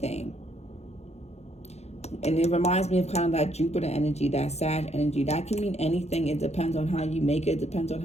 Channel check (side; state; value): right; late; 0.31 ms